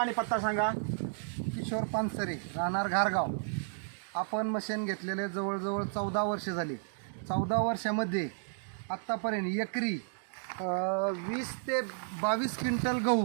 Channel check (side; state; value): left; silent; digital silence